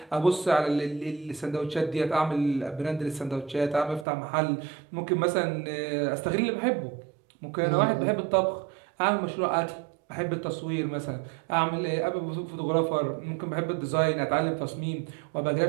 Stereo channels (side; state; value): left; drops out; at 4.0 s